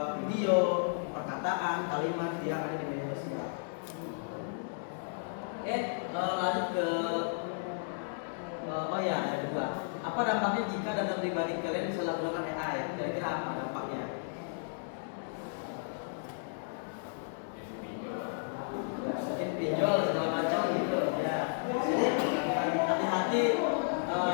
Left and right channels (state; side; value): silent; right; 55 dB below the other